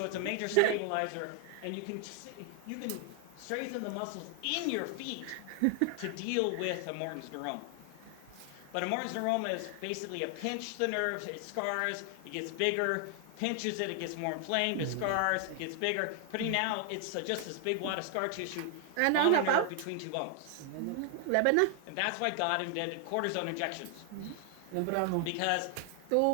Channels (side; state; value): both; different; correlation 0.00